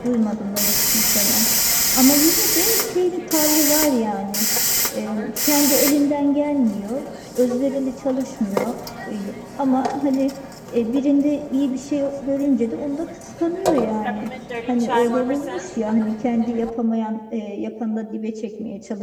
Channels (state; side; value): identical; both; correlation 1.00